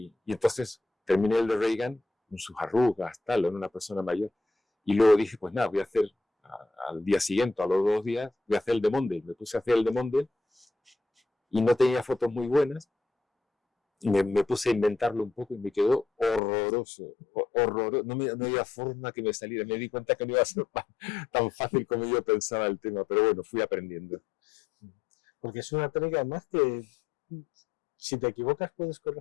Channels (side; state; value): right; drops out; at 16.4 s